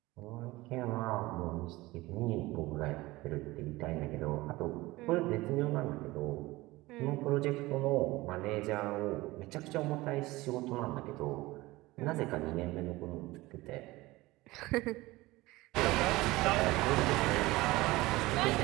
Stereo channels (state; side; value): quieter; left; 19.8 dB